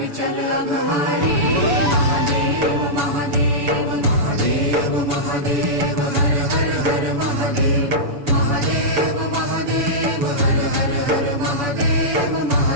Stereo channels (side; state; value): left; late; 7.0 ms